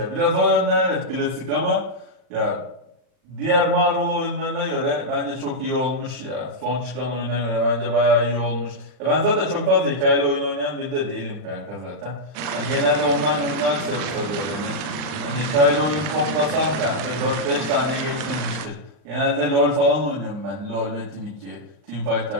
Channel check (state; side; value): late; left; 40 ms